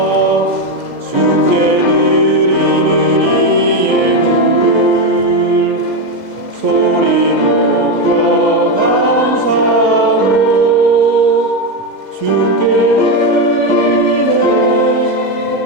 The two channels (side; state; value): right; late; 2.0 ms